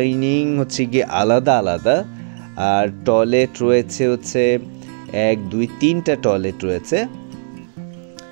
হচ্ছে গিয়ে আলাদা আলাদা, আর টয়লেট রয়েছে হচ্ছে 1 2 3টা টয়লেট রয়েছে।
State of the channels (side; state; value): left; silent; digital silence